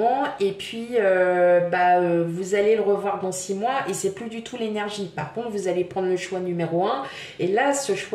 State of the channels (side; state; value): both; identical; correlation 1.00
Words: et puis vous allez le revoir dans 6 mois et c'est plus du tout l'énergie. Par contre, vous allez prendre le choix numéro 1 et là, ce